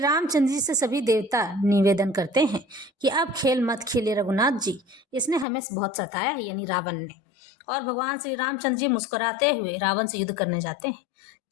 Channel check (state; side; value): drops out; right; at 5.5 s